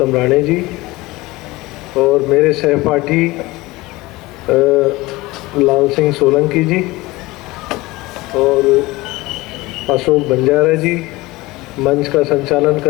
Rane जी और मेरे सहपाठी लाल सिंह सोलंकी जी और अशोक बंजारा जी, मंच का संचालन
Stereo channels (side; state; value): right; quieter; 20.6 dB